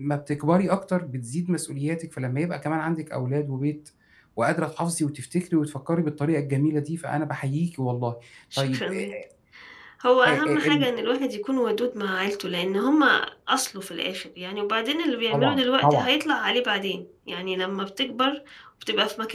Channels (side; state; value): both; identical; correlation 1.00